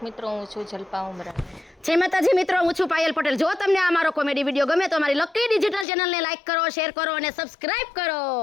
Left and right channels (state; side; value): drops out; right; at 5.9 s